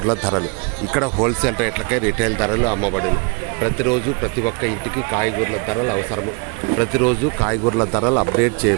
ధరలు. ఇక్కడ హోల్సేల్ రేట్లకే రిటైల్ ధరలు అమ్మబడును. ప్రతిరోజు ప్రతి ఒక్క ఇంటికి కాయగూరల ధరలు అవసరము. ప్రతిరోజు కాయగూరల ధరలు అప్డేట్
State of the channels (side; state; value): left; quieter; 32.6 dB